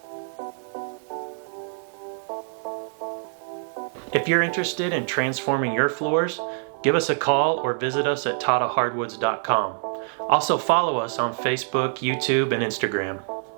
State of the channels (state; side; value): silent; left; 59 dB below the other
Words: can create memories for a lifetime. If you're interested in transforming your floors, give us a call or visit us at tottahardwoods.com. Also follow us on Facebook, YouTube, and Instagram.